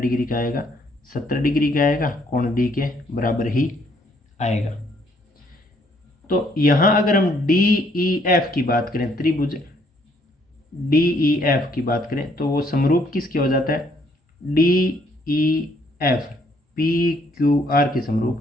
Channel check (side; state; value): both; normal; correlation 0.67